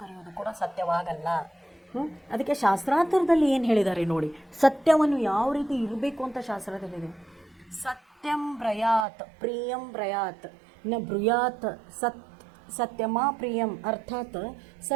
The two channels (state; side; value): drops out; left; at 9.1 s